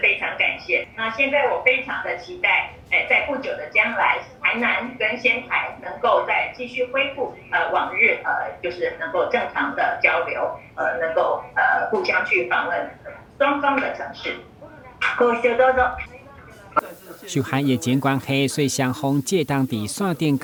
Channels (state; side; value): identical; both; correlation 1.00